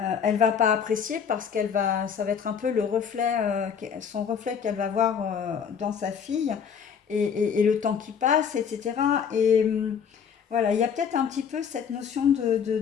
va pas apprécier parce ça va être un peu le reflet, son reflet qu'elle va voir dans sa fille, et le temps qui passe, etc. Et voilà, il y a peut-être un petit peu cette notion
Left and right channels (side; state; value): right; quieter; 7.2 dB